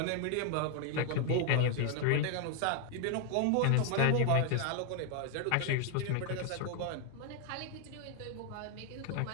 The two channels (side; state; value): both; different; correlation 0.00